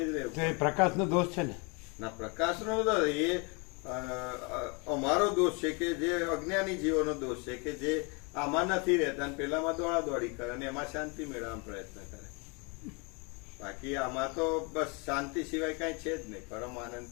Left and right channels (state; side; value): quieter; right; 31.4 dB